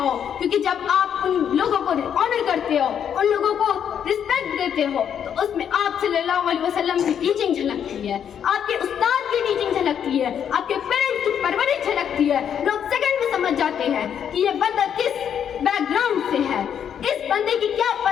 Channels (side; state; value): right; quieter; 8.6 dB